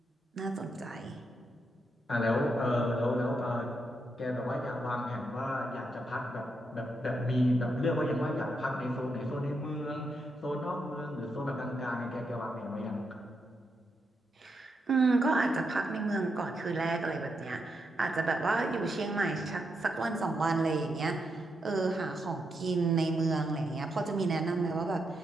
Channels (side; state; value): both; normal; correlation 0.82